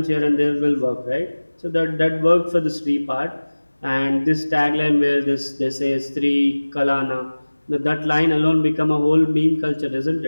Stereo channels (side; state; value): both; inverted; correlation -1.00